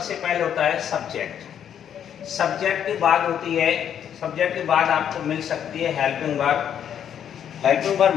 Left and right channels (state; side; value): quieter; right; 9.1 dB